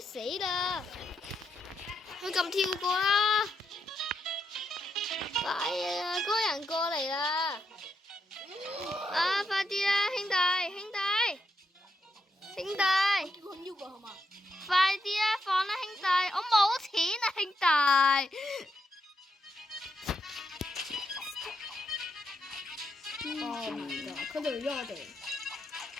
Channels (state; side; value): normal; both; correlation 0.82